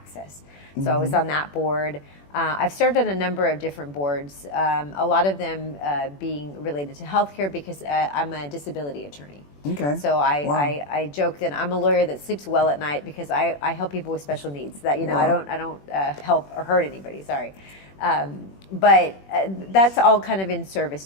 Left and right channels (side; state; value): right; late; 21 ms